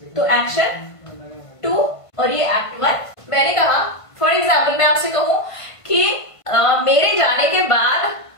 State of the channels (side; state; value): right; late; 1.5 ms